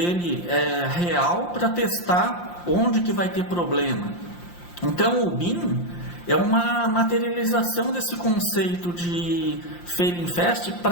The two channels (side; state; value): right; late; 5.7 ms